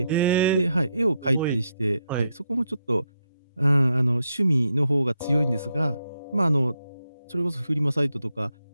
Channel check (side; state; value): both; inverted; correlation -0.81